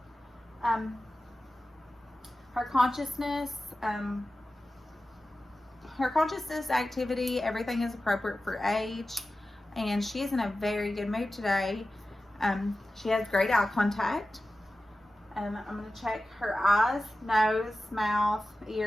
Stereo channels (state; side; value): normal; both; correlation 0.94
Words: Her consciousness activity, everything is appropriate for age, and she is in a very good mood today. She has great eye contact. I'm going to check her eyes, nose, mouth,